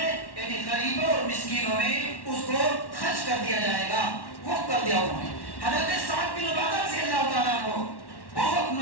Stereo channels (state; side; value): late; right; 1.1 ms